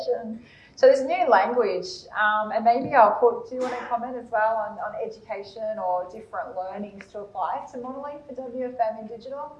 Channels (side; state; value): both; identical; correlation 1.00